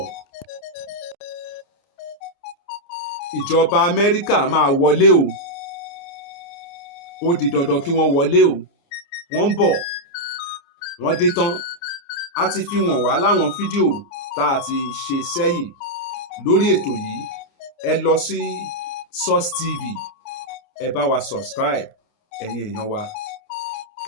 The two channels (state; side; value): late; right; 29 ms